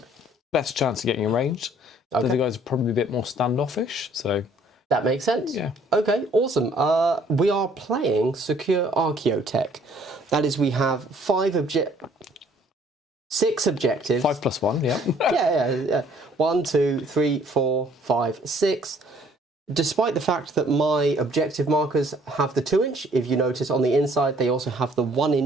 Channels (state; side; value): normal; both; correlation 0.60